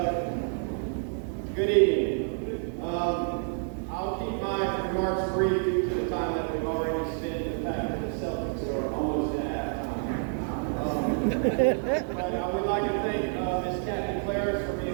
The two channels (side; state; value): left; silent; 59 dB below the other